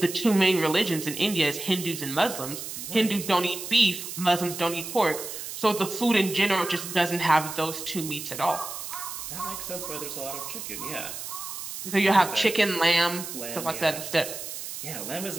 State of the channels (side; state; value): right; noise; hiss, 8 dB below the sound